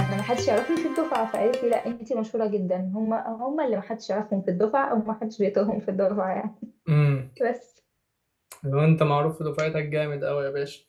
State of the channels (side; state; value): both; identical; correlation 1.00